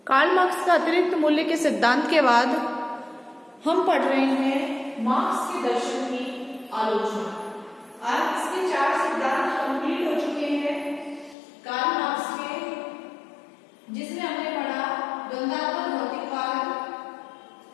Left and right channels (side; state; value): right; drops out; at 11.4 s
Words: Karl Marx का अतिरिक्त मूल्य के सिद्धांत के बाद हम पढ़ रहे हैं मार्क्स के दर्शन की आलोचना। आज इसके 4 सिद्धांत कंप्लीट हो चुके हैं कार्ल मार्क्स के, जिसमें हमने पढ़ा द्वंद्वात्मक भौतिकवाद,